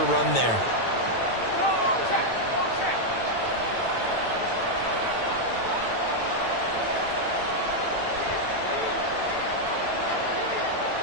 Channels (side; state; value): right; late; 9.0 ms